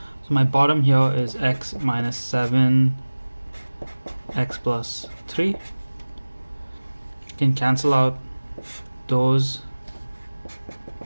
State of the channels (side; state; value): both; inverted; correlation -1.00